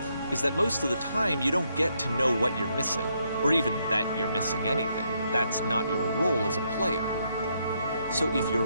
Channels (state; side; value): inverted; both; correlation -0.76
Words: is that most of the time you don't get to know what you're missing, or even that you're missing anything. That's not your role as a player. So if your